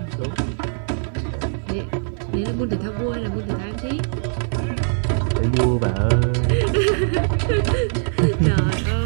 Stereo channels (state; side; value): silent; left; digital silence